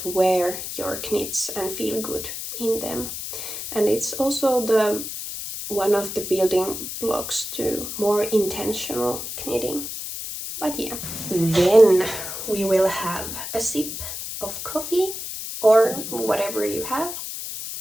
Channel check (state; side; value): noise; left; hiss, 7 dB below the sound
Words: wear your knits and feel good in them. And it's also one of the building blocks to more intentional knitting. But yeah, then we will have a sip of coffee or whatever you have.